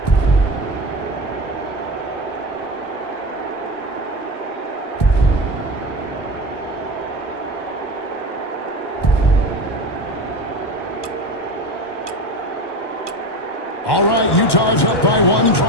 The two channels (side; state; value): right; late; 1.1 ms